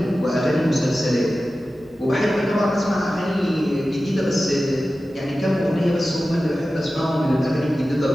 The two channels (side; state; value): both; normal; correlation 0.95